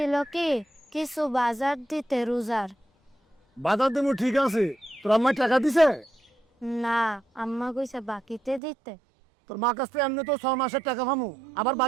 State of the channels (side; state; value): left; drops out; at 8.6 s